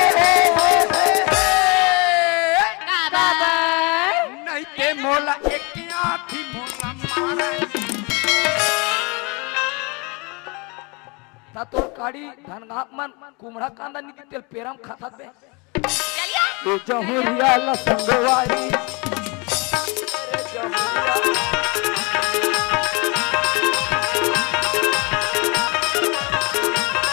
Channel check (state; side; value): quieter; right; 29.5 dB